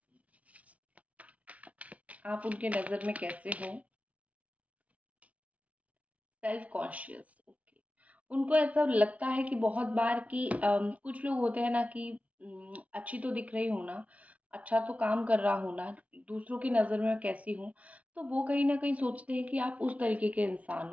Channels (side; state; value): left; late; 0.067 ms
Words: आप उनके नज़र में कैसे हो। Self conscious, okay. उनको ऐसा लगता है कि बहुत बार कि कुछ लोग होते हैं ना कि अच्छी तो दिख रही हूँ ना, अच्छा तो काम कर रहा हूँ ना, दूसरों की नज़र में मैं कैसी हूँ। तो वो कहीं ना कहीं सोचते हैं कि आप उस तरीके के इंसान